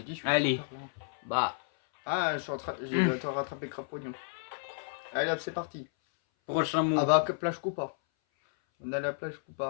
dit, je suis. Allez. Bah, Ah, je suis en train. J'ai le temps de rattraper Crapognon. Allez hop, c'est parti. prochain mot. Ah bah, que plage Coupa. On a la plage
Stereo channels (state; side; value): silent; right; 57 dB below the other